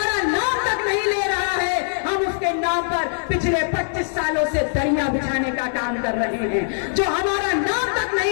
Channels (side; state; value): right; silent; digital silence